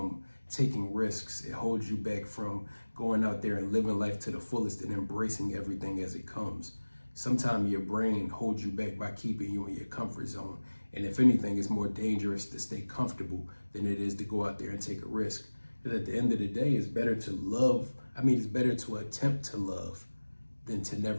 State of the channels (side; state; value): both; inverted; correlation -1.00